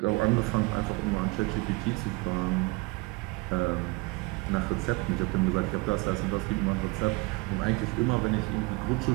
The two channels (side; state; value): left; quieter; 24.4 dB